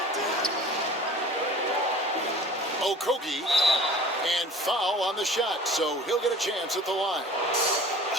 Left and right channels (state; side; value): normal; both; correlation 0.43